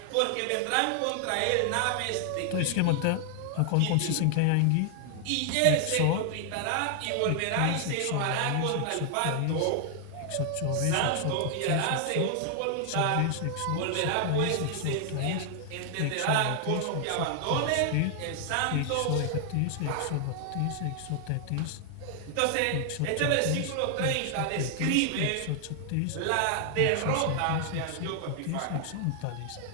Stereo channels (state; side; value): different; both; correlation 0.00